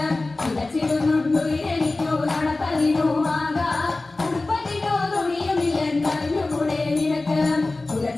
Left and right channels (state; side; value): quieter; right; 3.2 dB